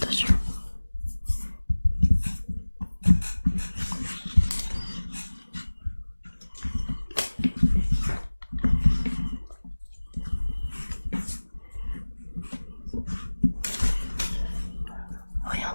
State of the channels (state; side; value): inverted; both; correlation -1.00